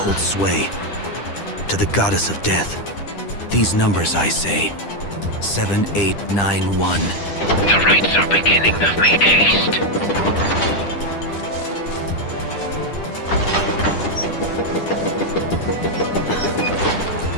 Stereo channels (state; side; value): late; right; 10 ms